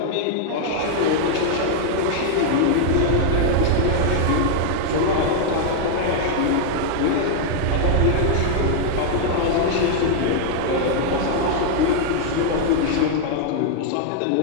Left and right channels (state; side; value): different; both; correlation -0.01